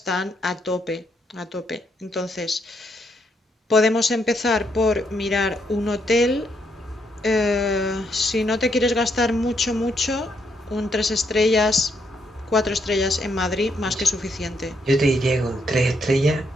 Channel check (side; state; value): both; normal; correlation 0.75